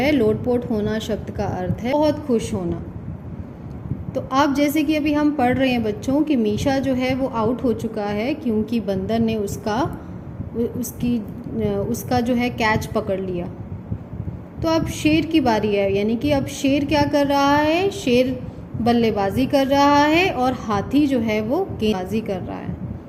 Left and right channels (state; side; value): identical; both; correlation 1.00